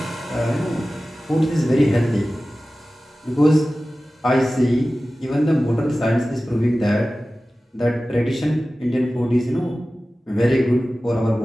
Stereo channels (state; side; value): normal; both; correlation 0.96